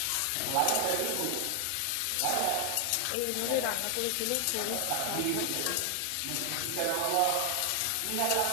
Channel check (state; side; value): different; both; correlation 0.00